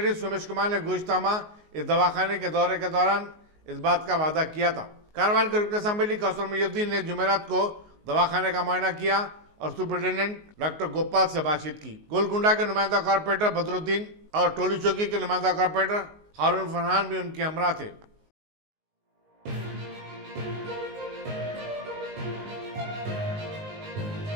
सोमेश कुमार ने गुज़श्ता माह इस दवाखाने के दौरे के दौरान इस बात का वादा किया था। कारवान के रुकन असेंबली कौसर मोहिउद्दीन ने जुमेरात को दवाखाने का मुआयना किया और सुपरिटेंडेंट डॉक्टर गोपाल से बातचीत की। गोलकुंडा के नुमाइंदा कॉर्पोरेटर बदरुद्दीन और टोली चौकी के नुमाइंदा कॉर्पोरेटर हारून फरहान भी उनके हमरा थे।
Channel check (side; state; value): left; late; 19 ms